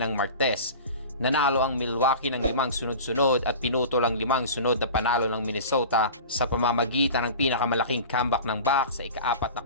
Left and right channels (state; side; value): inverted; both; correlation -0.35